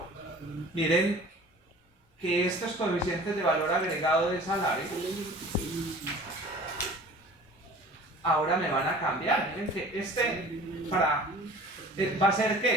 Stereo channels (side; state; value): both; normal; correlation 0.44